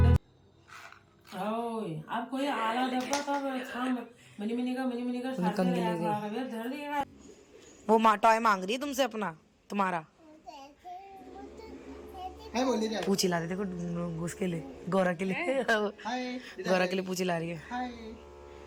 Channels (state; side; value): identical; both; correlation 1.00